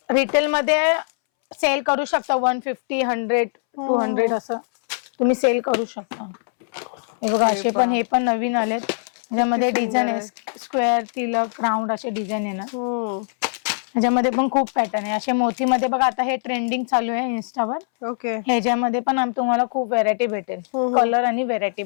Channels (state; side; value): silent; right; 64 dB below the other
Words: रिटेल मध्ये सेल करू शकता. 150, 100, 200 असं तुम्ही सेल करू शकता. हे बघा असे पण, हे पण नवीन आलेत. त्याच्यामध्ये डिझाईन आहे, स्क्वेअर, तिलक, राऊंड असे डिझाईन आहे ना. ह्याच्यामध्ये पण खूप पॅटर्न आहे. असे मोतीमध्ये बघा, आता हे ट्रेंडिंग चालू आहे इन्स्टावर. ओके. ह्याच्यामध्ये पण तुम्हाला खूप व्हेरायटी भेटेल, कलर आणि व्हेरायटी